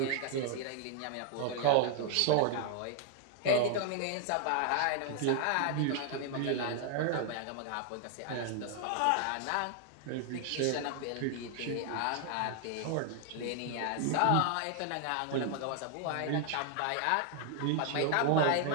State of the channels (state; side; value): different; both; correlation 0.00